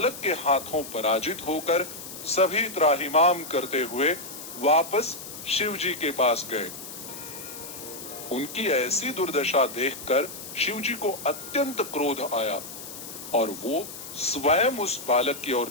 के हाथों पराजित होकर सभी त्राहिमाम करते हुए वापस शिवजी के पास गए। उनकी ऐसी दुर्दशा देखकर शिवजी को अत्यंत क्रोध आया और वो स्वयं उस बालक की ओर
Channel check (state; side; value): noise; left; hiss, 11 dB below the sound